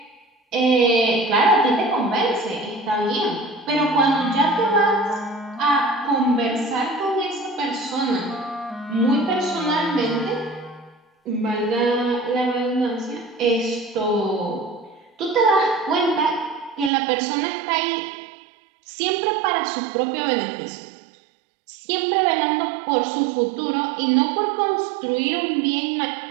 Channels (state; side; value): drops out; left; at 16.9 s